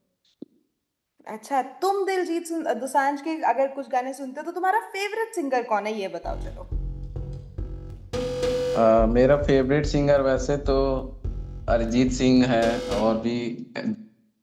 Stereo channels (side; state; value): both; identical; correlation 1.00